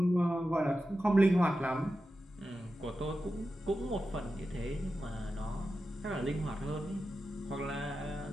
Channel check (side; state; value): both; normal; correlation 0.91